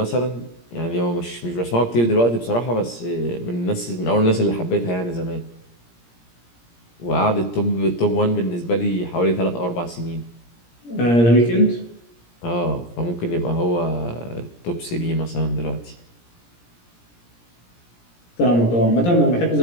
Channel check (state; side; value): late; right; 17 ms